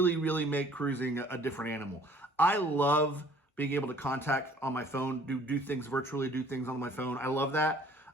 make cruising a different animal. I love being able to contact on my phone, do things virtually, do things on my phone. I love that.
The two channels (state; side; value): normal; both; correlation 0.55